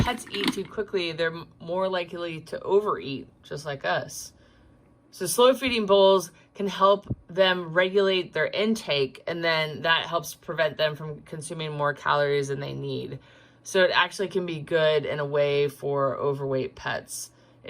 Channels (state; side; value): identical; both; correlation 1.00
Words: eat too quickly, they're more likely to overeat, just like us. So slow feeding bowls can help them regulate their intake, and then that helps prevent them from consuming more calories than they need. So it actually can be good in a way for overweight pets